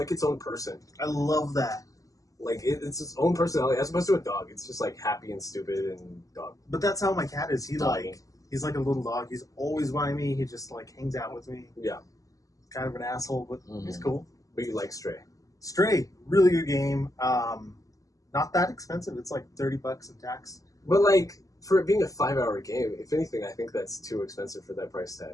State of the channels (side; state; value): right; late; 0.17 ms